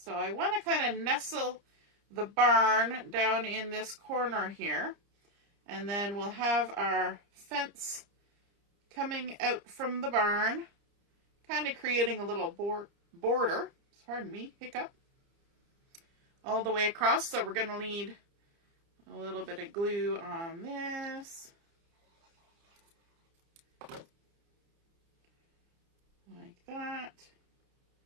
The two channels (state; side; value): late; left; 30 ms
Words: I want to kind of nestle the barn down in this corner here, and then we'll have our fence coming out from the barn, kind of creating a little border, pardon me, hiccup, all the way across. So we're going to need a little bit of glue on this, like that.